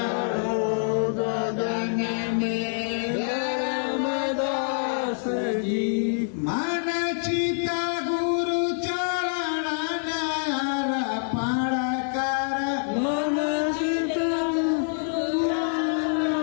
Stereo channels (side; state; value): right; silent; 61 dB below the other